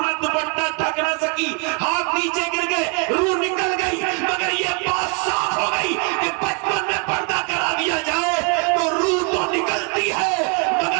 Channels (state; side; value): quieter; left; 33.4 dB